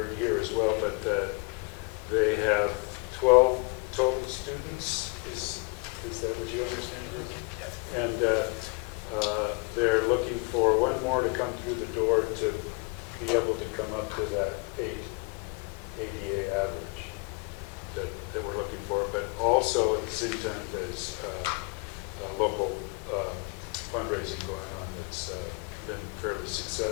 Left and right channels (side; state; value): right; quieter; 31.6 dB